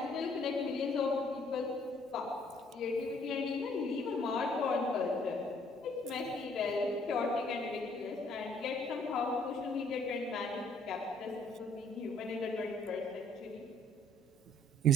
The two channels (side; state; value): both; normal; correlation 0.63